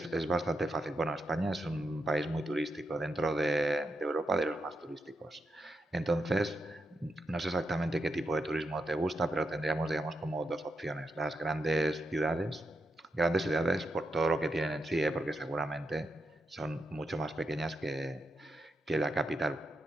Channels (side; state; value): both; normal; correlation 0.84